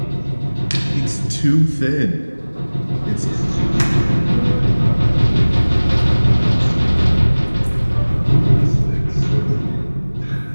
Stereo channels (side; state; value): both; inverted; correlation -1.00